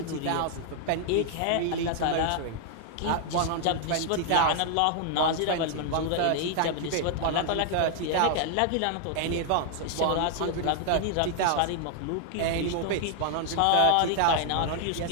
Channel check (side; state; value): both; different; correlation 0.00